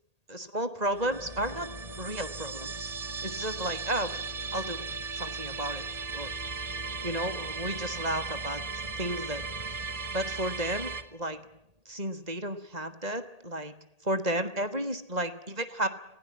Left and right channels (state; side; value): late; left; 1.8 ms